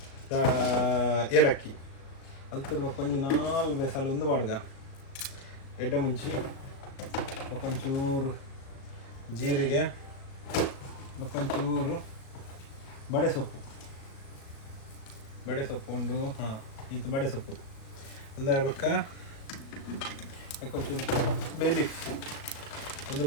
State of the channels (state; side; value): late; right; 37 ms